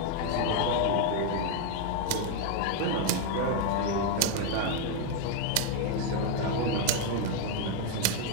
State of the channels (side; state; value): both; different; correlation 0.01